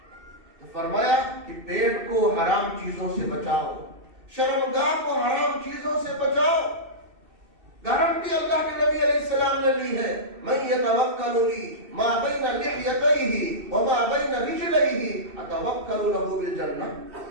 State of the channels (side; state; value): left; late; 2.7 ms